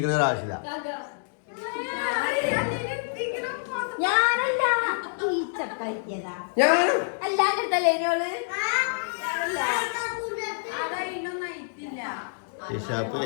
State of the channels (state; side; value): silent; right; digital silence